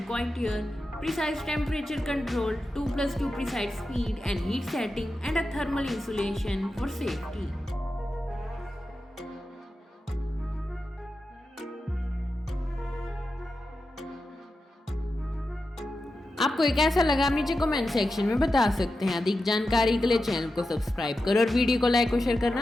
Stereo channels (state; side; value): normal; both; correlation 0.91